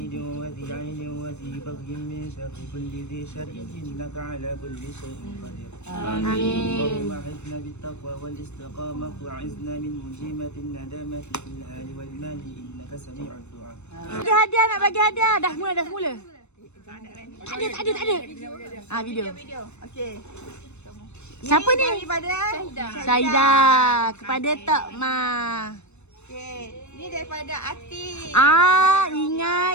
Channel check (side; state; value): right; late; 0.82 ms